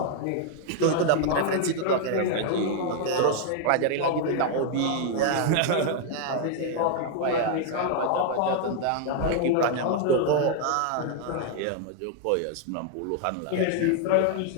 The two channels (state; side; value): different; both; correlation 0.00